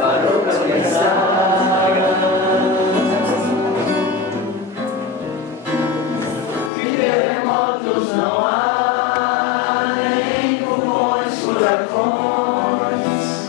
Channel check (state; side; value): drops out; right; at 6.7 s